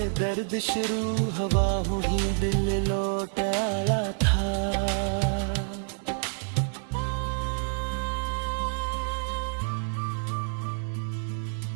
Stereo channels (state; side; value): silent; left; 59 dB below the other